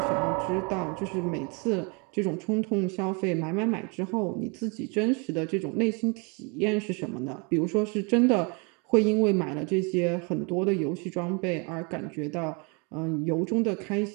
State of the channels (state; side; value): quieter; left; 32.7 dB